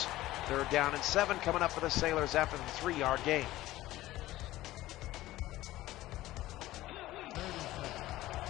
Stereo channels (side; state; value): right; quieter; 16.2 dB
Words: 3rd down and 7 coming up for the Sailors after the 3-yard gain.